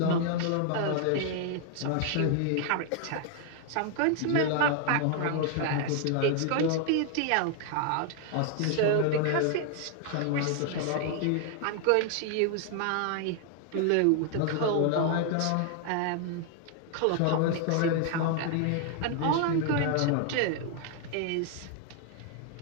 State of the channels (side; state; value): both; different; correlation 0.00